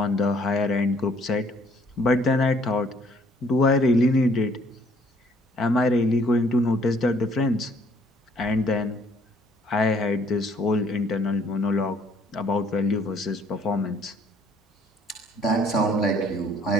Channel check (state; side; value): normal; both; correlation 0.62